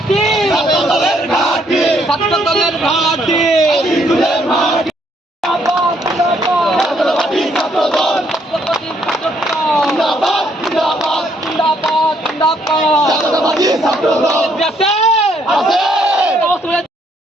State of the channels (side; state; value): both; normal; correlation 0.70